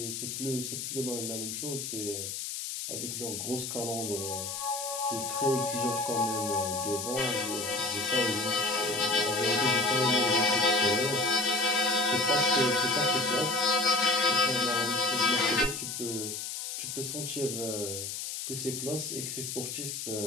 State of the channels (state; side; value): noise; left; hiss, 5 dB below the sound